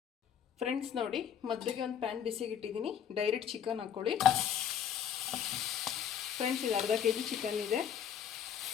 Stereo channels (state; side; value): quieter; right; 8.8 dB